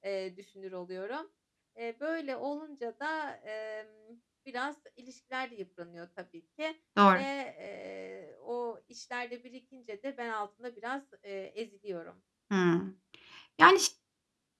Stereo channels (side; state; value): both; identical; correlation 1.00